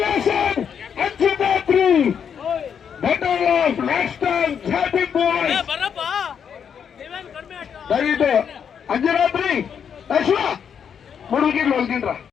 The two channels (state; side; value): quieter; right; 7.6 dB